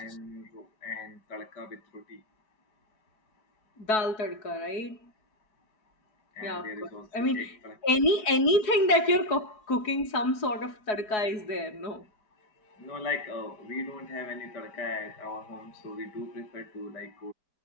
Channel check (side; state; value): right; late; 4.7 ms